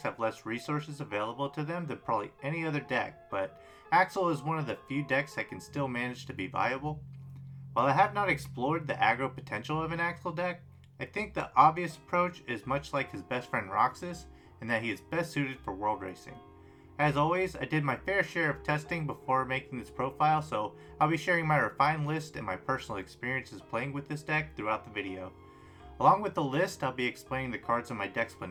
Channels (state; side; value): identical; both; correlation 1.00